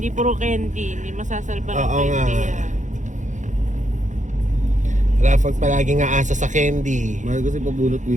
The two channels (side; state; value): left; late; 0.36 ms